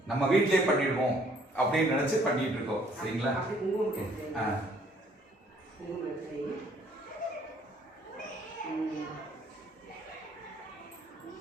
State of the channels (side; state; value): both; normal; correlation 0.62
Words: நம்ம வீட்டிலேயே பண்ணிடுவோம் அப்படின்னு நினைச்சு பண்ணிட்டு இருக்கோம். சரிங்களா?